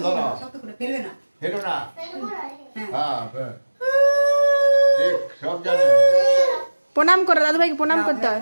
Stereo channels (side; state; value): both; inverted; correlation -1.00